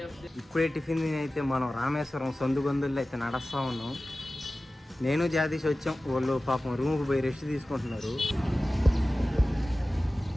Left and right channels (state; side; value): normal; both; correlation 0.96